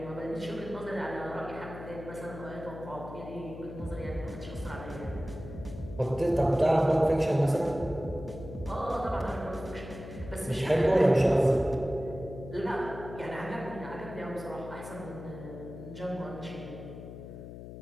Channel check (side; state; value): left; noise; hum, 12 dB below the sound